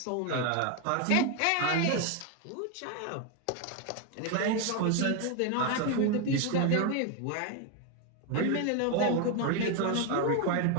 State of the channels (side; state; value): both; different; correlation 0.02